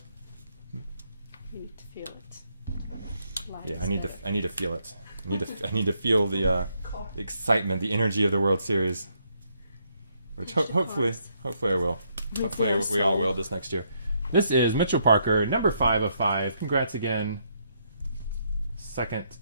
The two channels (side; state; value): both; inverted; correlation -0.74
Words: You need to feel it. Live Yeah, is I need there. to feel it. I need to feel the excitement, the energy of the World Series, which hopefully I will. Hopefully we all will this next year. This is Mitchell Parker, number 5 of 5. Congrats again. Second